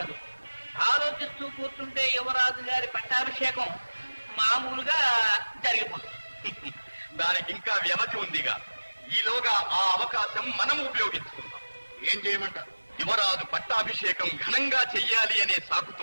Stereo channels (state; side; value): inverted; both; correlation -1.00